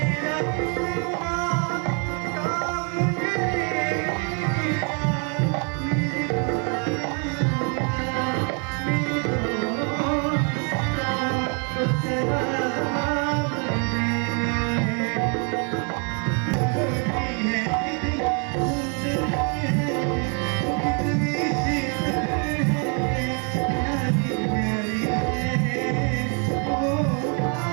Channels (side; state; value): left; quieter; 38.1 dB